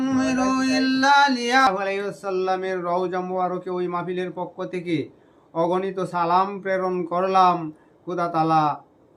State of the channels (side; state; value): both; identical; correlation 1.00